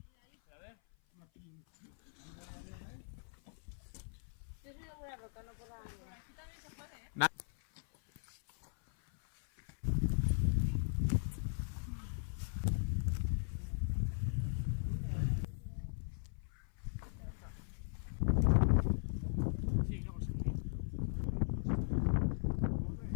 Yo soy de buena roca, no por la... Aquí también se puede, ¿eh?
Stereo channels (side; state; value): right; silent; 52 dB below the other